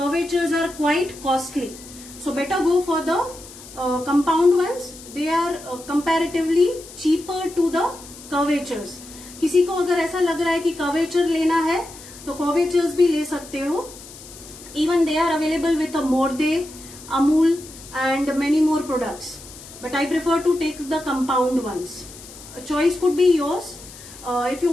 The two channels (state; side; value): noise; left; hiss, 17 dB below the sound